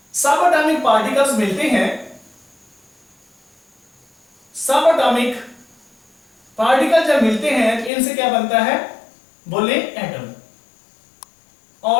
सब एटॉमिक पार्टिकल्स मिलते हैं. सब एटॉमिक पार्टिकल जब मिलते हैं तो इनसे क्या बनता है, बोले एटम.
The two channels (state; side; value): drops out; right; at 7.9 s